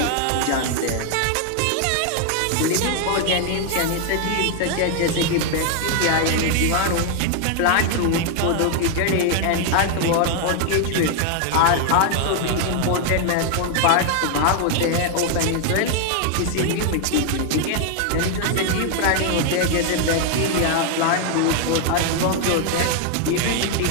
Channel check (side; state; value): both; different; correlation 0.00